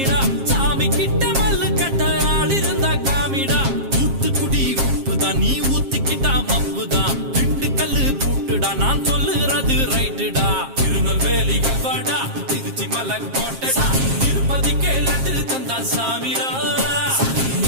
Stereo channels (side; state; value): left; late; 7.5 ms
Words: சாமி கிட்ட மல்லு கட்ட ஆள் இருந்தா காமிடா ஊத்துக்குடி உப்புதான் நீ ஊத்திக்கிட்டா மப்புதான் ரெண்டு கல்லு பூட்டுடா நான் சொல்லுறது ரைட்டுடா திருநெல்வேலி கல்வாடா திருச்சி மலை கோட்டடா திருப்பதிக்கே லட்டு தந்தா சாமிடா